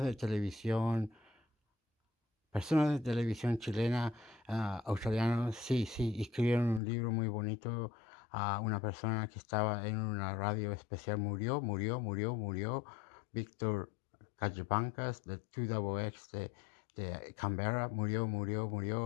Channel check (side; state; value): right; drops out; at 6.8 s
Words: de televisión chilena, australianos, sí, escribieron un libro muy bonito. Una persona que estaba en una radio especial murió. Víctor Callabancas de 2XX de Canberra